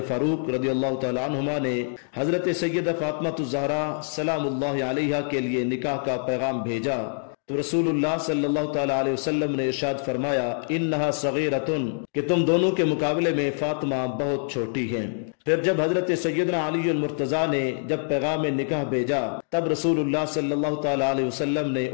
فاروق رضی اللہ تعالی عنہما نے حضرت سیدہ فاطمہ الزہرا سلام اللہ علیہا کے لیے نکاح کا پیغام بھیجا تو رسول اللہ صلی اللہ تعالی علیہ وسلم نے ارشاد فرمایا انہا صغیرۃ، کہ تم دونوں کے مقابلے میں فاطمہ بہت چھوٹی ہیں۔ پھر جب حضرت سیدنا علی المرتضیٰ نے جب پیغام نکاح بھیجا تب رسول اللہ صلی اللہ تعالی علیہ وسلم نے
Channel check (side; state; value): right; silent; digital silence